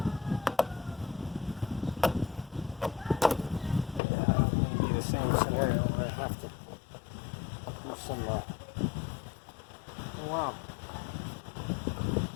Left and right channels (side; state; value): right; drops out; at 4.0 s